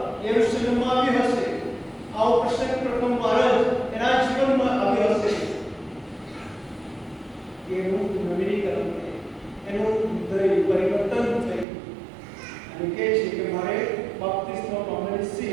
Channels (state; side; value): drops out; left; at 11.7 s